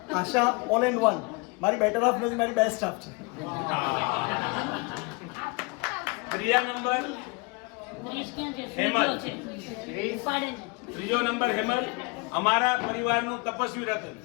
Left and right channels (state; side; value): quieter; right; 28.7 dB